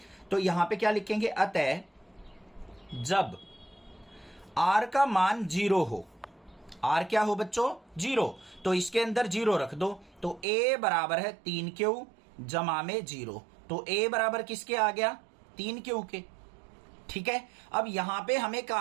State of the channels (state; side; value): drops out; left; at 10.5 s